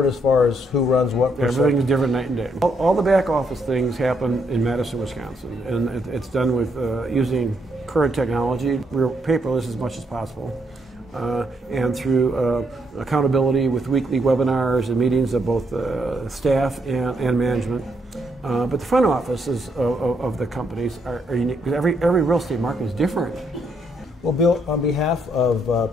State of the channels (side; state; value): both; normal; correlation 0.75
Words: as far as who runs what percent? Everything's different night and day. All the back office things happen in Madison, Wisconsin, and it's done with using current technology. We're paperless as much as possible, and through accountability with weekly webinars and meetings of both staff and management. But the front offices of the companies are unique because every real estate market is different. Well, Bill, on behalf